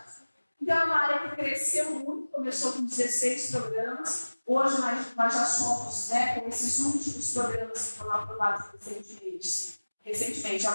Então, é uma área que cresceu muito, começou com 16 programas, hoje nós já somos, né, com esses últimos programas que foram aprovados recentemente, é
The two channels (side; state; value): both; inverted; correlation -1.00